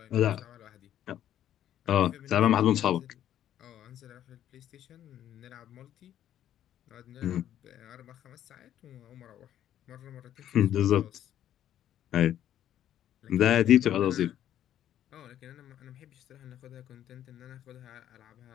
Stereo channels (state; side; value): quieter; right; 11.2 dB